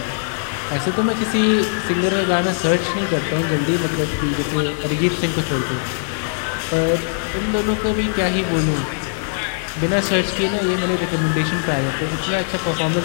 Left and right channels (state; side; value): silent; right; digital silence